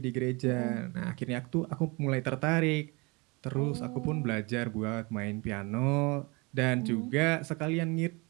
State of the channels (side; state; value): left; quieter; 27.6 dB